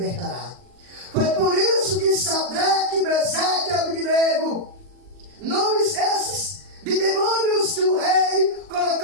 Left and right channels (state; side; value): late; left; 40 ms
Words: Foi por isso que Sadraque, Mesaque e Abednego, nomes esses de demônios que o rei